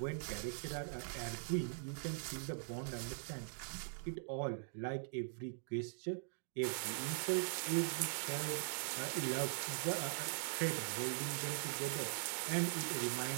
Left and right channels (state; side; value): silent; left; digital silence